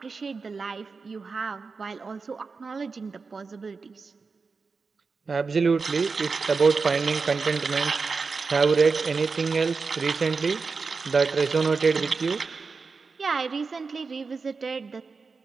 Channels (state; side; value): quieter; left; 4.6 dB